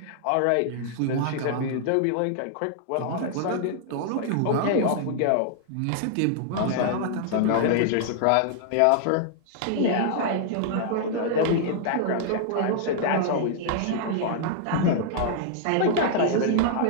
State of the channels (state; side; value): different; both; correlation -0.01